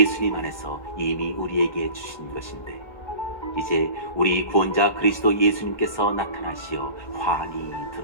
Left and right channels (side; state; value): right; late; 1.7 ms